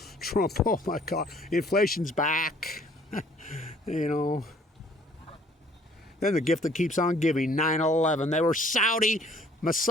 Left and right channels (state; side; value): normal; both; correlation 0.58